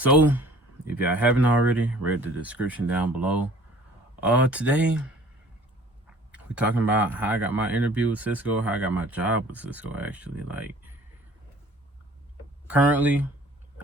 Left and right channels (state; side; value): normal; both; correlation 0.51